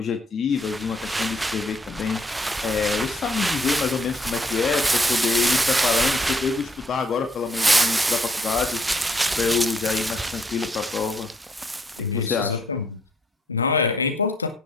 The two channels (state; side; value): normal; both; correlation 0.68